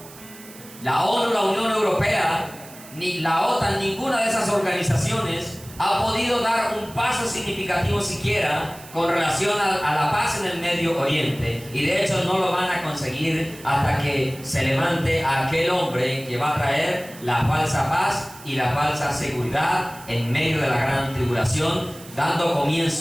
La ONU, la Unión Europea, ni la OTAN, ninguna de esas organizaciones ha podido dar un paso significativo siquiera con relación a la paz en el Medio Oriente, y de hecho no lo van a conseguir hasta que se levante aquel hombre que va a traer la falsa paz y la falsa seguridad en medio de la gran tribulación, dando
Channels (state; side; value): noise; right; hiss, 19 dB below the sound